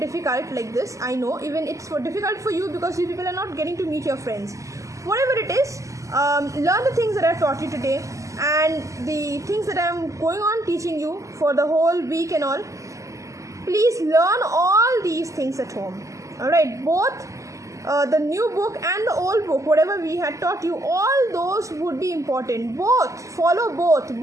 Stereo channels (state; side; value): late; left; 0.16 ms